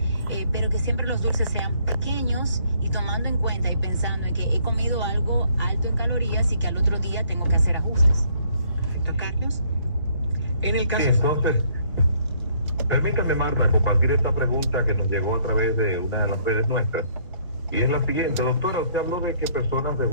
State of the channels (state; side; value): inverted; both; correlation -0.65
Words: pero que siempre los dulces sean pequeños y tomando en cuenta y pensando en que he comido algo alto en calorías y que al otro día tengo que hacer ajustes. Carlos. En el caso... Sí, entonces, permítame, Marta, compartir esta pregunta que nos llegó a través de una de las redes nuestras. Y es la siguiente, doctora, usted habló de que personas